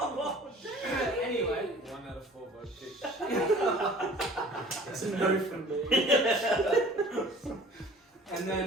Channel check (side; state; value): both; normal; correlation 0.48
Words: Anyway, 1 out of 4 vote kick. It's a no from me. and